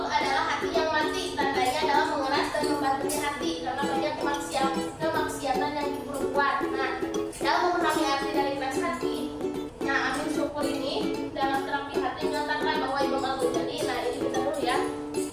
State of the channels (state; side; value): identical; both; correlation 1.00